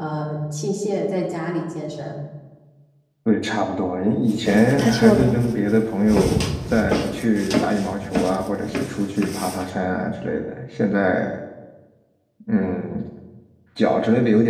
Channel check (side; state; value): both; identical; correlation 1.00